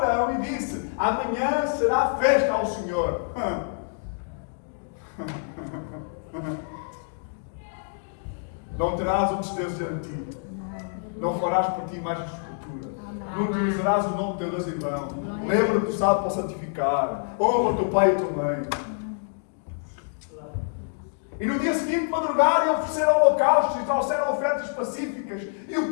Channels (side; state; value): right; silent; digital silence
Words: e disse: amanhã será festa ao Senhor. Não terás outros deuses diante de ti. Não farás por ti mais escultura. Não utilizarás o nome de teu Deus em vão. Lembra-te do sábado para santificar. Honra o teu pai e a tua mãe. E no dia seguinte madrugaram e ofereceram holocaustos e trouxeram ofertas pacíficas. E